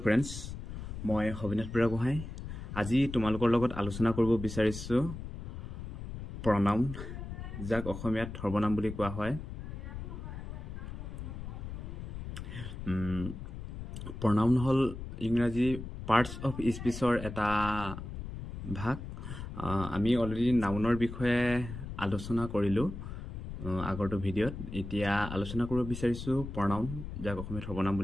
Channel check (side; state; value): left; noise; rumble, 8 dB below the sound